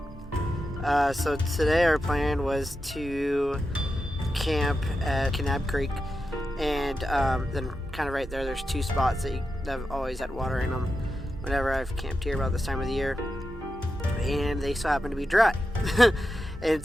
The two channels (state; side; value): normal; both; correlation 0.89